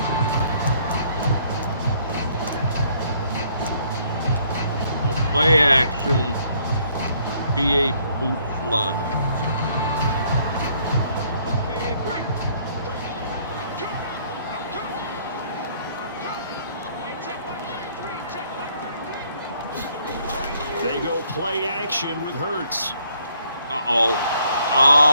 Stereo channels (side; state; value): both; inverted; correlation -0.66